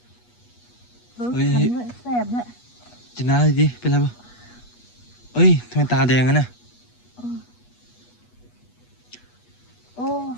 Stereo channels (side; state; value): right; late; 8.3 ms